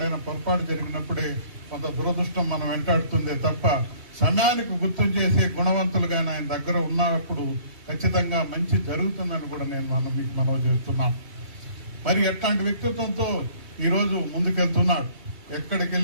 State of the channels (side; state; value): left; late; 2.7 ms